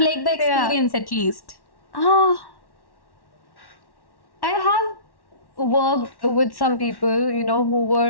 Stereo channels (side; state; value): right; late; 1.1 ms